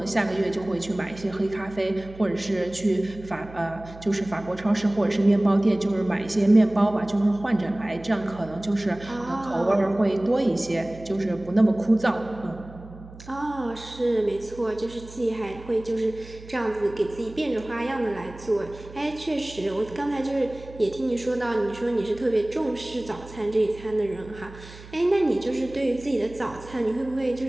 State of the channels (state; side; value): noise; right; hum, 18 dB below the sound